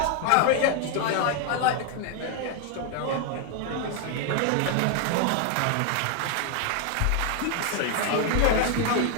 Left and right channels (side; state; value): both; different; correlation 0.01